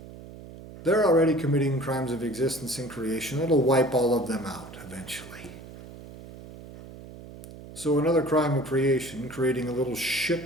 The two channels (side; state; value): right; noise; hum, 16 dB below the sound